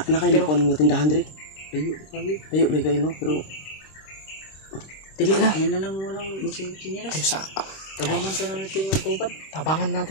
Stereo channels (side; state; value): right; late; 26 ms